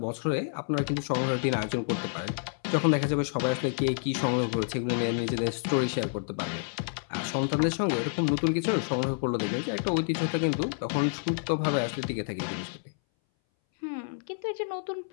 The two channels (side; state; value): right; silent; 59 dB below the other